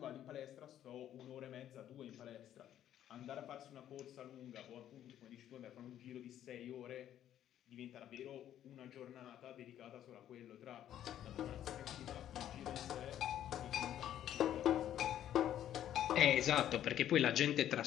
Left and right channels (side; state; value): right; quieter; 11.2 dB